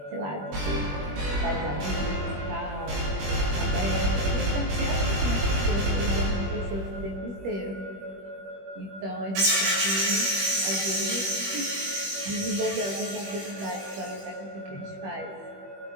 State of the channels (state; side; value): late; left; 21 ms